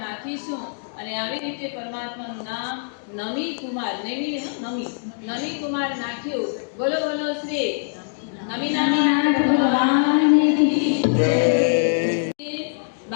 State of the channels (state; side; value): silent; right; digital silence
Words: નાખીશું. અને આવી રીતે પરમાત્માનું નામ નમી કુમાર નમી કુમાર નાખ્યું. બોલો બોલો શ્રી નવીનાથ ભગવાનની જય.